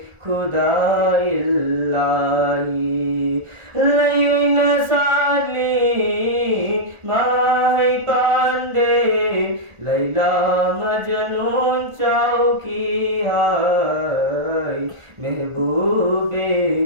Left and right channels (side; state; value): left; late; 1.5 ms